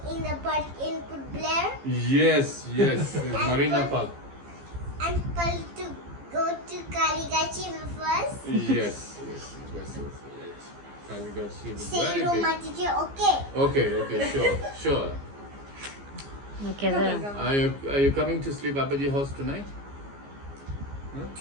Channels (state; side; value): late; left; 15 ms